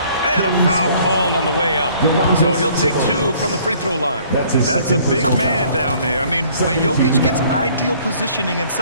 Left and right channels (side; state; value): both; inverted; correlation -0.58